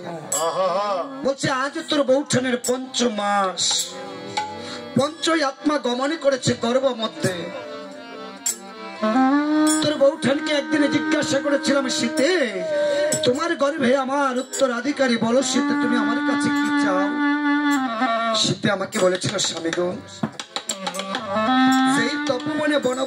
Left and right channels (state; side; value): identical; both; correlation 1.00